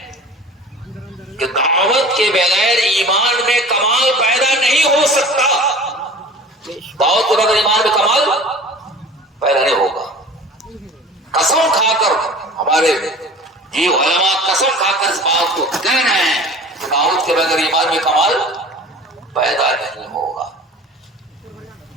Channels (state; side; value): normal; both; correlation 0.40